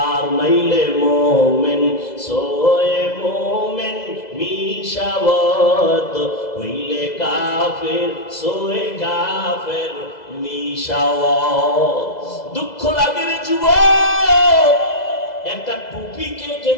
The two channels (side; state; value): right; late; 2.0 ms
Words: মাইলে মোমেন সোয়ে মোমেন মিশাওয়াত, হইলে কাফের সোয়ে কাফের মিশাওয়াত। দুঃখ লাগে রে যুবক, একটা টুপিকে